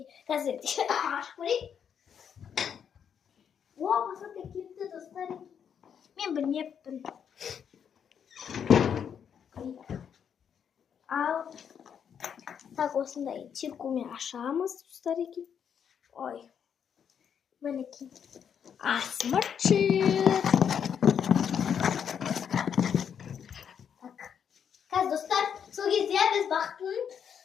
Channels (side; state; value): right; quieter; 7.9 dB